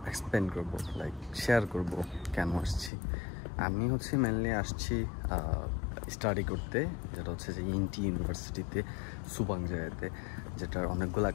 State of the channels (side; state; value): right; drops out; at 2.9 s